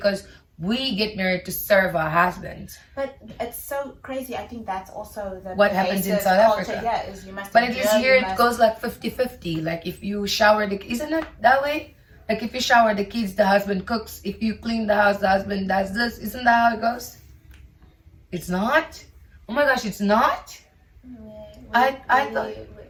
we get married to serve our husbands. But it's so crazy. I think that's also what happens in South Africa. Yeah, is you must. But at least here it goes like 50-50. Like if you shower isn't it that way? Like if you shower the kids, the husband cooks. If you clean the house, the husband does this. Isn't that how it goes? It's not? Oh my gosh, it's not?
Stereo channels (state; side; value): identical; both; correlation 1.00